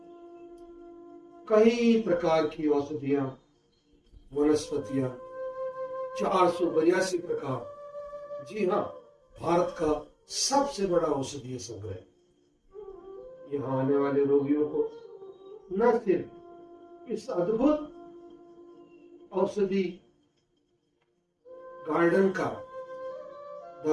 कई प्रकार की औषधियां, वनस्पतियां, 482 प्रकार, जी हाँ, भारत का सबसे बड़ा औषधीय संग्रह। यहाँ आने वाले रोगियों को न सिर्फ इस अद्भुत औषधि गार्डन का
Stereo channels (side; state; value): both; identical; correlation 1.00